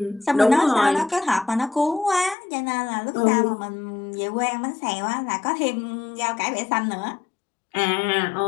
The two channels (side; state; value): right; drops out; at 2.4 s